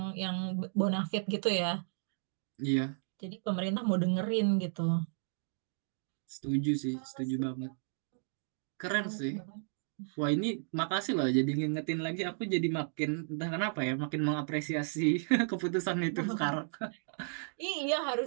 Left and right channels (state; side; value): silent; left; digital silence